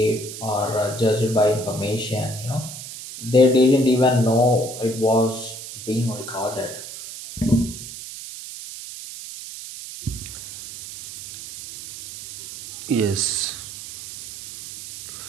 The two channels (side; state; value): right; noise; hiss, 11 dB below the sound